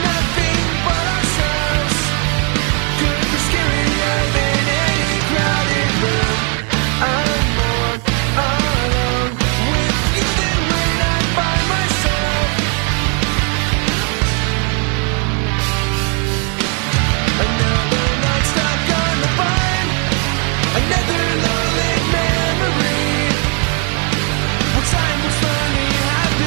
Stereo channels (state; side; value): quieter; left; 37.6 dB